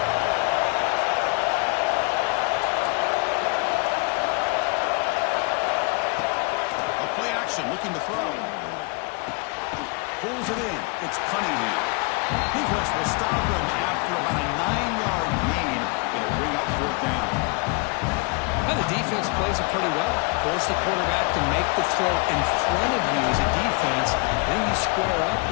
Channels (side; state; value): right; quieter; 31.6 dB